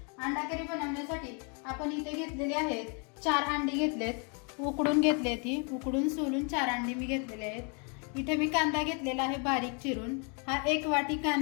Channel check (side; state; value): right; quieter; 37.1 dB